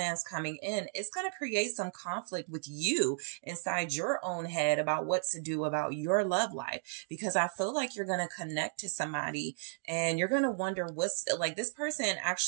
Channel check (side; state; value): left; silent; digital silence